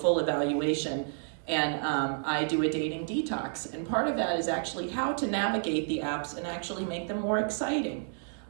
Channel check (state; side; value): silent; left; 58 dB below the other